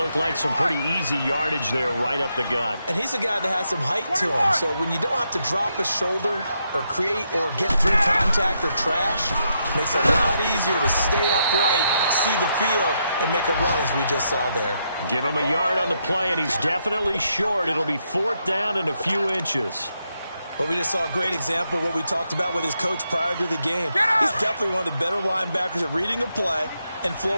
like some pretty easy yardage there right up the gut. And he's a guy that has some height to him, so when you don't have to drop a shoulder or create or get through contact or trash, makes it a lot easier to stay upright, see the field, and make a run as we just saw there. Give him a yard on the play, and he's definitely short. It'll be 4th down and a few inches. But we just saw a great example of what we talked about with his coach prior to the game. He's definitely one of the better linebackers at reading a play and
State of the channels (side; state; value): both; inverted; correlation -0.80